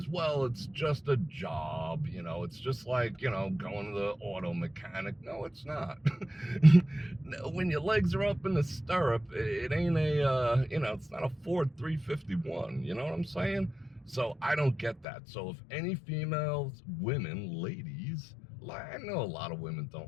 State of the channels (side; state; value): right; drops out; at 15.1 s